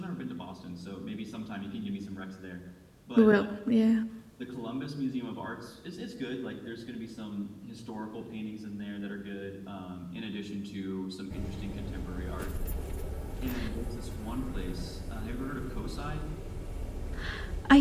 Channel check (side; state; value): both; identical; correlation 1.00